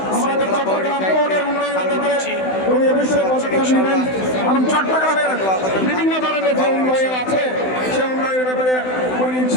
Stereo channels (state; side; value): late; right; 16 ms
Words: আমাদের চট্টগ্রাম পৌরের উন্নয়নের ব্যাপারে উনি অবশ্যই পদক্ষেপ নেবেন এবং চট্টগ্রামের বিভিন্ন ধরনের যে উন্নয়ন আছে সে উন্নয়নের ব্যাপারে উনি